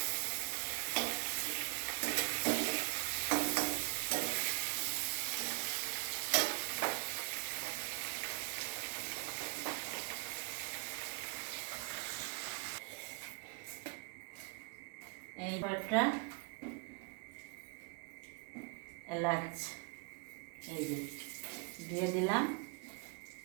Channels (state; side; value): quieter; left; 33.0 dB